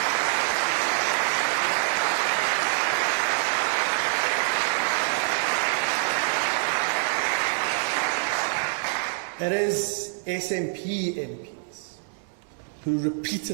It is SNP MPs who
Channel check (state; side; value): silent; left; digital silence